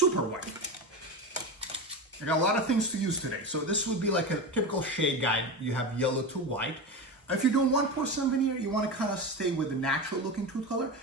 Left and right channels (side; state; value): both; normal; correlation 0.22